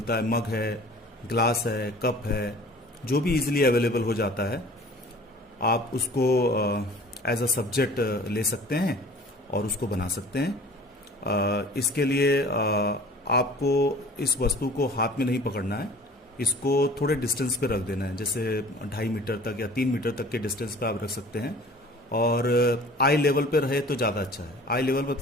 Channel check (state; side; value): normal; both; correlation 0.46